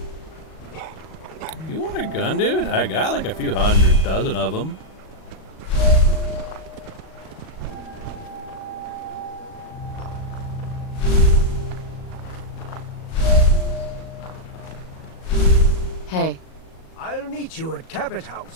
You want a gun, dude? I got like a few hundred dozen of them. Hey. I'll meet you at Cabot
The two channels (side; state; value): right; late; 38 ms